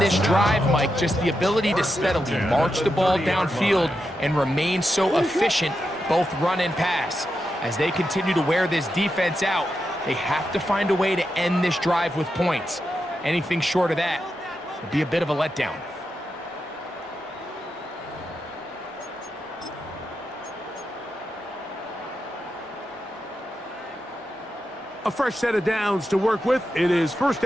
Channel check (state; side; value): normal; both; correlation 0.87